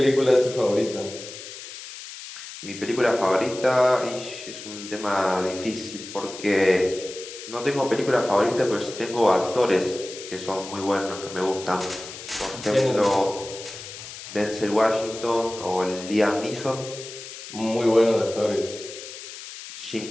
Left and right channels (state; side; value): noise; left; hiss, 12 dB below the sound